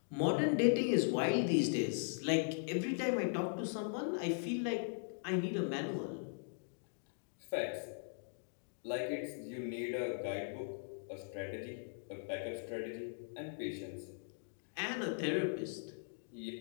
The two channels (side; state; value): right; silent; digital silence